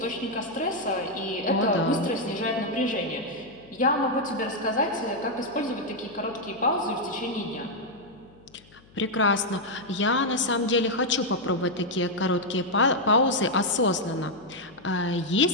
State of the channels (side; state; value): left; noise; hum, 26 dB below the sound